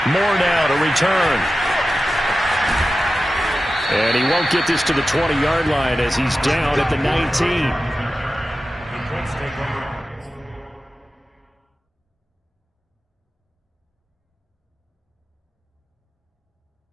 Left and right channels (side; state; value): both; normal; correlation 0.93